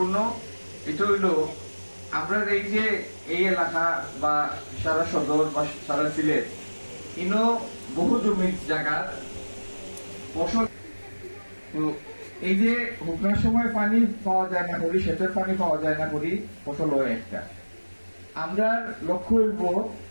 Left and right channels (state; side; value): inverted; both; correlation -1.00